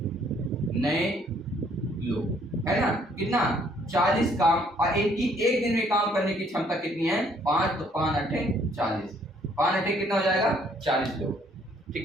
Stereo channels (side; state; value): both; normal; correlation 0.64